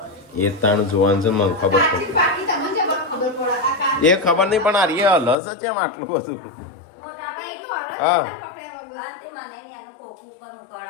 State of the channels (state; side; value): drops out; right; at 5.4 s